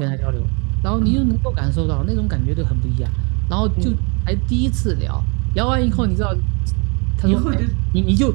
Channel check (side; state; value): left; quieter; 32.8 dB